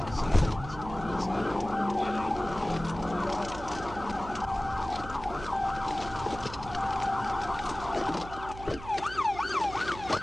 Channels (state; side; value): noise; right; hum, 13 dB below the sound